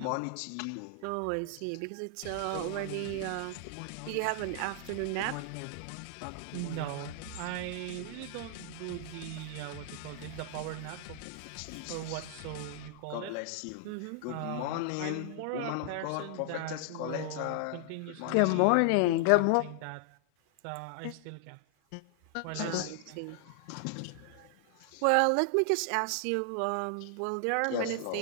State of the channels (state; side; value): different; both; correlation 0.00